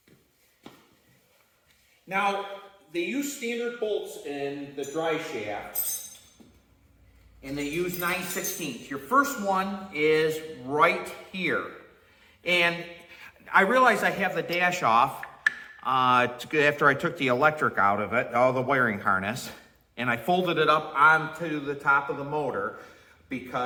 Now, they use standard bolts in the dry shaft, and they use 9/16. Your first one is right here. And I realize I have the dash off after I took the electric out of it, all the wiring harness, and I folded it up onto the top of the motor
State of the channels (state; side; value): identical; both; correlation 1.00